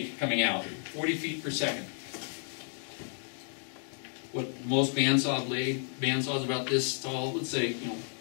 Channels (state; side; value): silent; right; 56 dB below the other